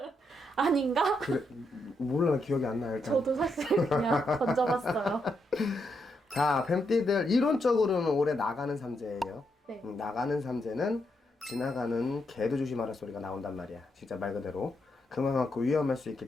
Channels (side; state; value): both; normal; correlation 0.80